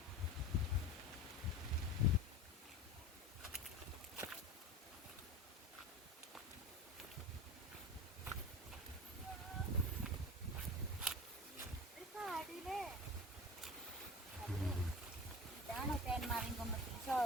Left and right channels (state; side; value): normal; both; correlation 0.32